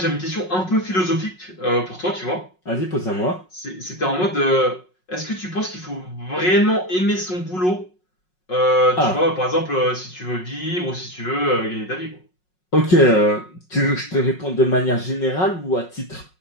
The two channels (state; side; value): late; right; 5.5 ms